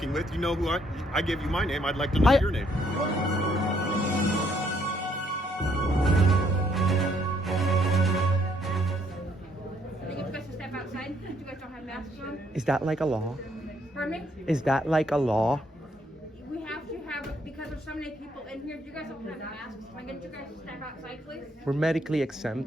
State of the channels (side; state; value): both; normal; correlation 0.69